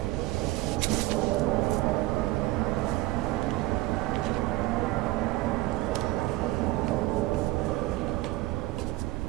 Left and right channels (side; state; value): left; quieter; 18.8 dB